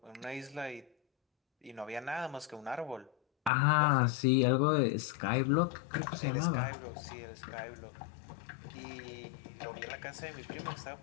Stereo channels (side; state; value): right; drops out; at 3.5 s